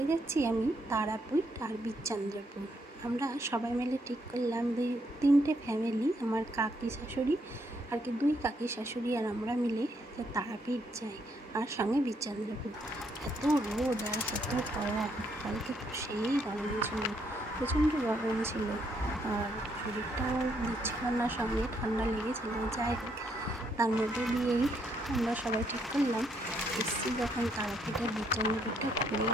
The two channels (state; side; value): normal; both; correlation 0.73